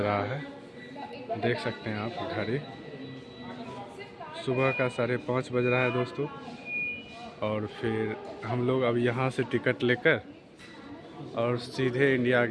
है, देख सकते हैं आप घड़ी। सुबह का 5:30 बज रहा है दोस्तों। और फिर हम लोग अब यहाँ से टिकट लेकर और सीधे इंडिया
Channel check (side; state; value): both; identical; correlation 1.00